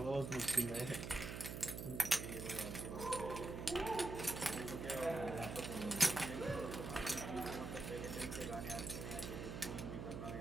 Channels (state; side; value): noise; right; hum, 6 dB below the sound